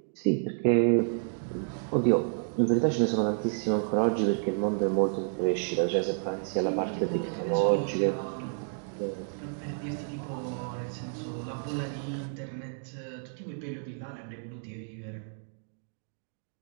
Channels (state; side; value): silent; left; digital silence